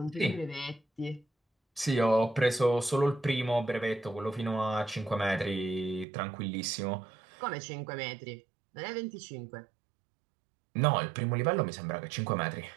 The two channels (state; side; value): drops out; left; at 6.1 s